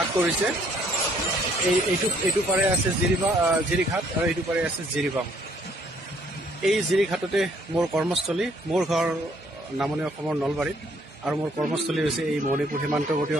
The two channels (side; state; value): both; normal; correlation 0.65